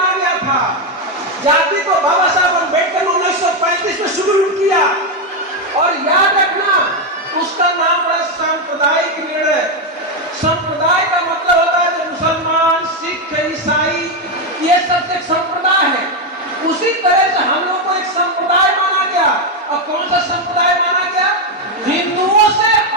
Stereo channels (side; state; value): both; normal; correlation 0.06